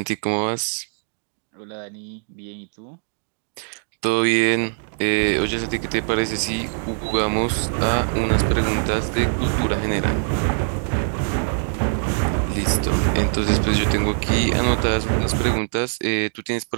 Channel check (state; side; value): silent; left; digital silence